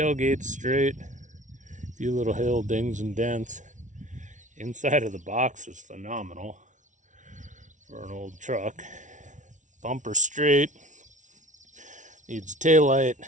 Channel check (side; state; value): left; late; 0.37 ms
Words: straight. A few little hill dings and dents. Inside of the box is phenomenal for an old truck. Bumper straight. Needs a taillight.